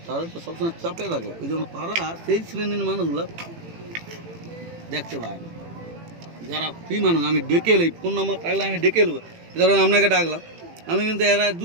তারা তো সবসময় চাপে থাকে, ওই জন্য তারা সেই শ্রেণীর মানুষগুলো দেখতে পায় না। যারা ফ্রি মানুষ, আমি ডেকে এলি, ফোন নাম্বার থাকলে আমি ডেকে এলবো, ধরুন আপনাকে ডাকলাম, আমি কিন্তু এরা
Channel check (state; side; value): late; left; 18 ms